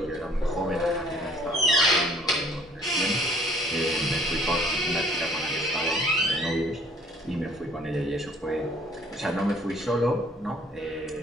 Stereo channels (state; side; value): normal; both; correlation 0.57